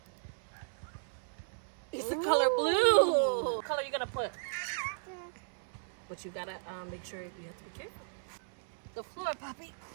It's the color blue. What color you gonna put? But you gotta make sure you have to be careful. The floor, Poppy.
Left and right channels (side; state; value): left; silent; 54 dB below the other